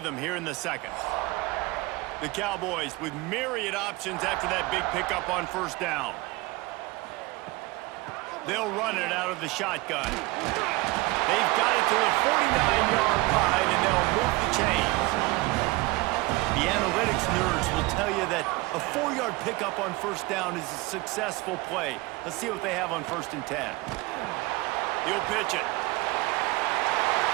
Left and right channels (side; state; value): left; quieter; 22.2 dB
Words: here in the second. The Cowboys with myriad options after that big pickup on first down. They'll run it out of the shotgun. They've got it to the 49-yard line, and they'll move the chains. The analytics nerds will tell you that a 4-yard pickup on first down is a successful play. Let's see what they have on first and 10. He'll pitch it.